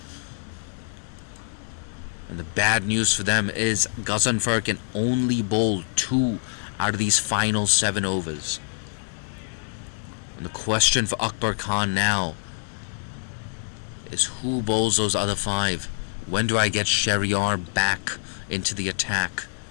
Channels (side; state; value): right; silent; digital silence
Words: And the bad news for them is Ghazanfar can only bowl 2 out of these final 7 overs. And the question for Akbar Khan now is who bowls those other 5? When do I get Shahryar back into the attack?